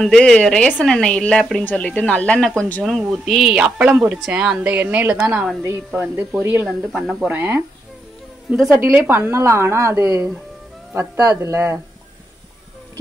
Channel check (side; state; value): both; normal; correlation 0.81